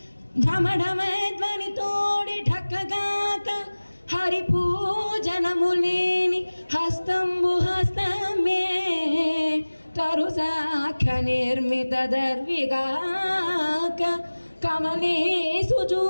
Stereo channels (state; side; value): inverted; both; correlation -1.00